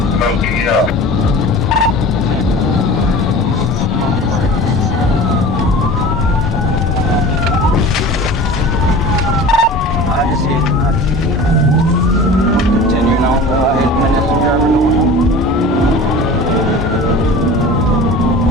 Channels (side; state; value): both; normal; correlation 0.38